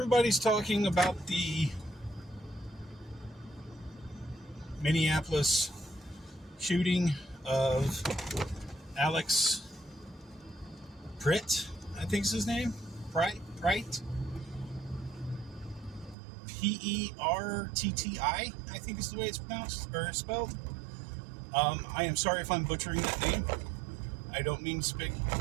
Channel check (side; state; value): left; drops out; at 16.2 s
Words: talking about the Minneapolis shooting of Alex Pritt, I think is his name. Pritt? Pertti, I think is the way it's pronounced or spelled. I am sorry if I'm butchering that name. I don't mean to speak